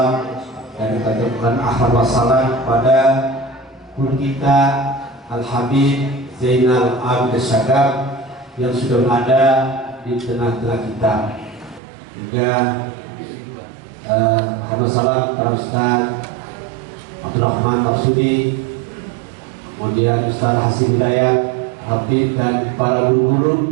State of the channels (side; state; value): left; drops out; at 11.8 s